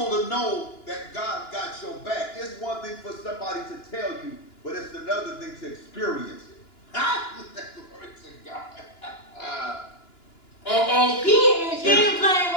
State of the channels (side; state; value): right; late; 2.9 ms